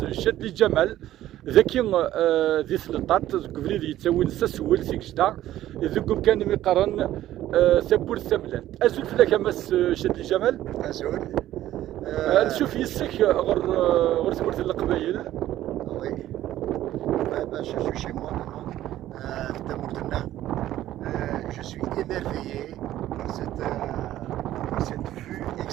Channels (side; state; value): left; quieter; 13.6 dB